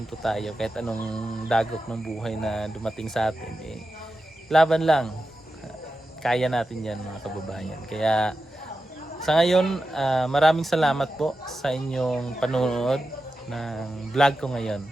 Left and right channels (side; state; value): both; normal; correlation 0.91